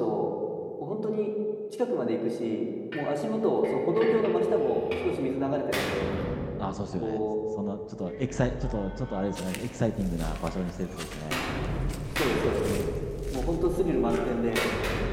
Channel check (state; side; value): identical; both; correlation 1.00